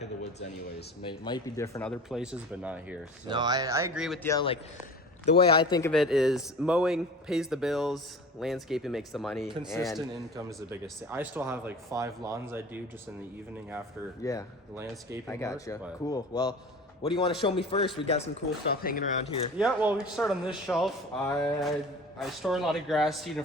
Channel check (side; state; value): both; normal; correlation 0.38